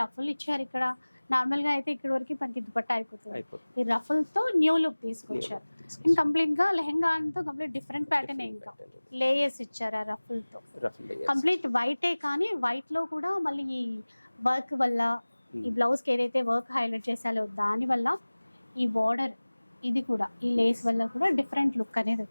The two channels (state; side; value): inverted; both; correlation -1.00